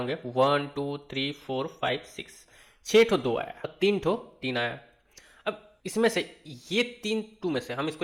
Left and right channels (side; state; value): both; identical; correlation 1.00